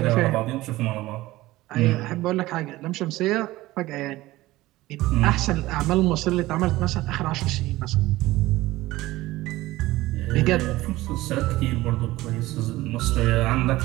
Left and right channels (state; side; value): quieter; left; 17.9 dB